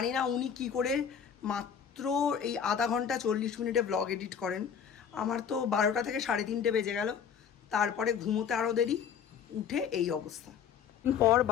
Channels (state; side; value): quieter; right; 7.6 dB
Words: না উনি কি করে মাত্র এই আধা ঘন্টা 40 মিনিটে ব্লগ এডিট করেন। আমার তো 12টা থেকে 3:30 বেজে গেল। তারপরে ঘুমোতে আরও দেরি, উঠে এই অবস্থা। পর